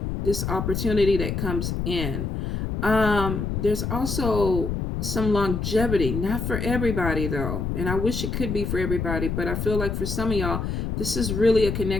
opportunity that comes in. There's also some longevity, not for everybody though, and I wish it could be for everybody, but I feel like for some of y'all, this is really a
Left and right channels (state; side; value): noise; left; rumble, 2 dB below the sound